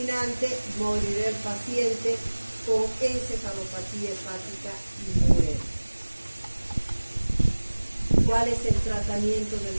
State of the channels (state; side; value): inverted; both; correlation -1.00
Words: morirá el paciente con encefalopatía hepática y muere. ¿Cuál es el tratamiento de la